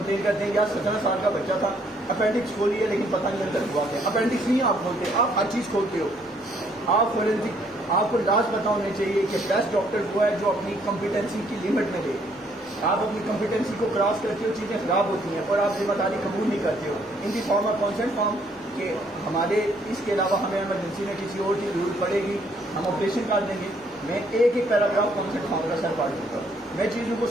کرتے ہیں یار 17 سال کا بچہ تھا، اپینڈکس کھولی ہے لیکن پتہ نہیں اندر ہوا کیا. اپینڈکس نہیں آپ کھولتے، آپ ہر چیز کھولتے ہو. آپ فورینسک، آپ کو لاز پتا ہونے چاہیے کہ بیسٹ ڈاکٹر وہ ہے جو اپنی کمپیٹنسی کی لمٹ میں دے. آپ اپنی کمپیٹنسی کو کراس کرتے ہو، چیزیں خراب ہوتی ہیں اور آپ ذمہ داری قبول نہیں کرتے ہو. ان دی فارم آف کانسنٹ فارم کہ ہمارے اس کے علاوہ ہمیں ایمرجنسی میں کسی اور کی ضرورت پڑے گی، ہم آپریشن کر دیں گے. میں ایک ایک پیراگراف کانسنٹ فارم کا سر پڑھ دوں گا، میں چیزوں کو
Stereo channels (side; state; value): both; normal; correlation 0.67